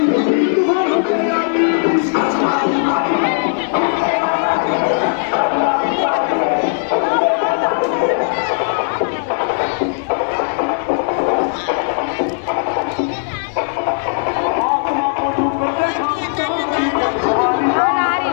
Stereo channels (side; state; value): right; silent; digital silence